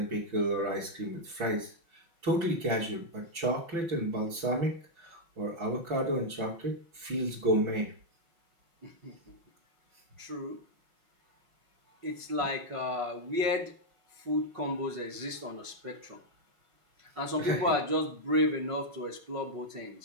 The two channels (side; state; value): left; late; 6.0 ms